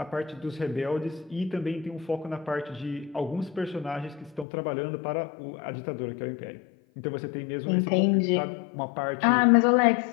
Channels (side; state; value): right; drops out; at 4.5 s